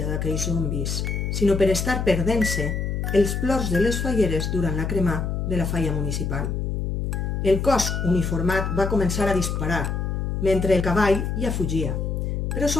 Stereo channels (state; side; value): noise; left; hum, 1 dB below the sound